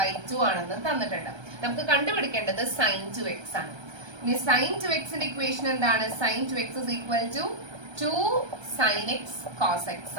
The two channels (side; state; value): left; late; 1.3 ms